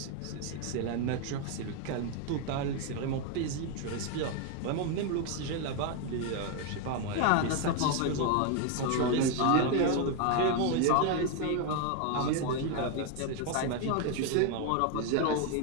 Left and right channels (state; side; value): different; both; correlation 0.01